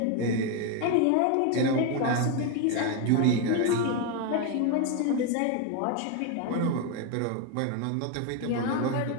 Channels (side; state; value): both; different; correlation 0.02